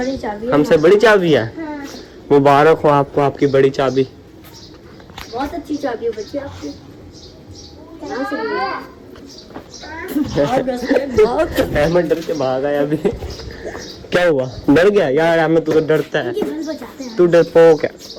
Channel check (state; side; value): identical; both; correlation 1.00